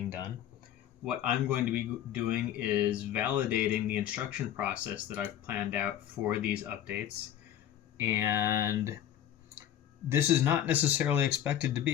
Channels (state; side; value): quieter; right; 10.8 dB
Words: done. What I'm going to be doing is validating the instruction process that I've planned out for these updates. And this is not necessarily expected to